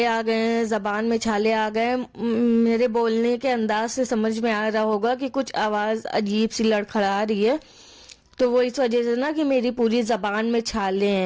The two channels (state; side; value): identical; both; correlation 1.00